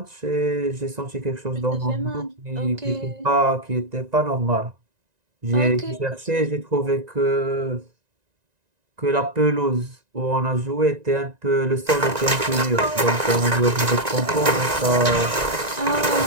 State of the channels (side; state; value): left; late; 1.9 ms